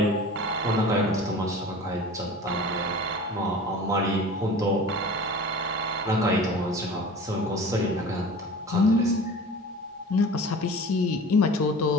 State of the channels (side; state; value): both; normal; correlation 0.39